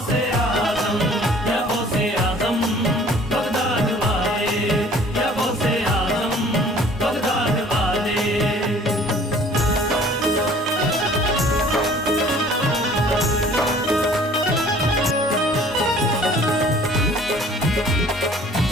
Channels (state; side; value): normal; both; correlation 0.52